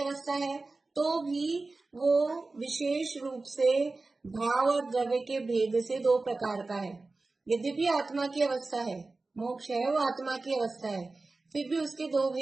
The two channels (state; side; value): quieter; left; 3.5 dB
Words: है। तो भी वो विशेष रूप से भाव और द्रव्य के भेद से 2 प्रकार का है। यद्यपि आत्मा की अवस्था है, मोक्ष है वो आत्मा की अवस्था है, फिर भी उसके 2